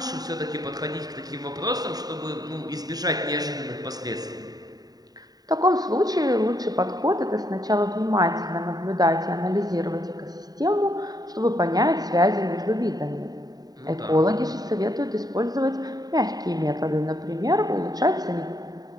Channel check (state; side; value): late; left; 0.18 ms